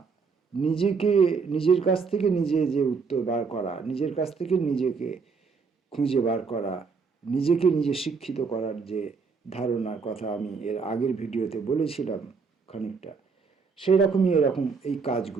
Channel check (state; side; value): quieter; left; 5.1 dB